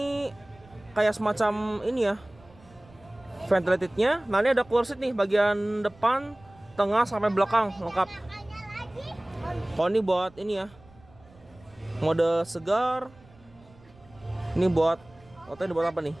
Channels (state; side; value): noise; right; rumble, 26 dB below the sound